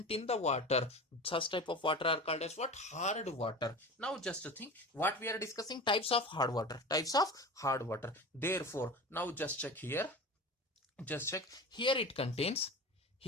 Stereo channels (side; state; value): both; normal; correlation 0.32